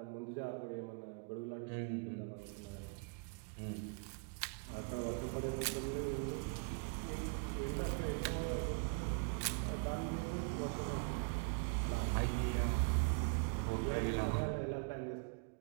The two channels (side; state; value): left; quieter; 36.0 dB